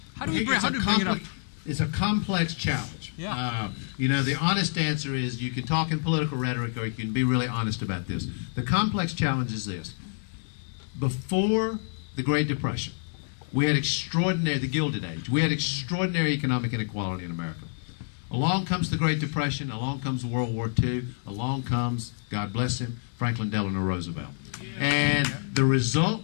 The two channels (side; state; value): right; silent; 60 dB below the other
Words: How do we bring it up? It's a complex challenge. Yeah. You know, the honest answer is you can talk in political rhetoric or you can be really honest about this. The complex challenge is this. Before the Great Depression, we had the Gilded Age, we had extraordinary economic inequality in America. Along comes the Great Depression, along comes World War II, along comes, God bless him, Franklin Delano Roosevelt. And the